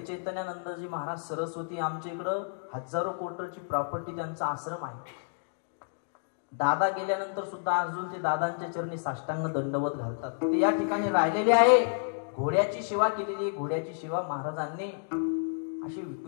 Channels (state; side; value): silent; right; digital silence